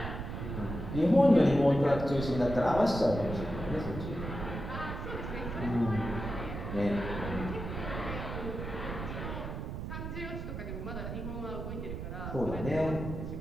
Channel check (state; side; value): noise; right; rumble, 6 dB below the sound